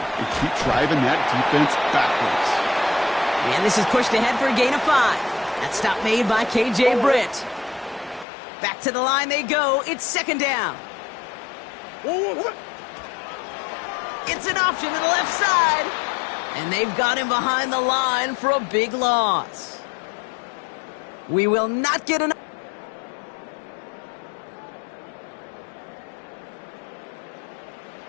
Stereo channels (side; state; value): right; drops out; at 8.2 s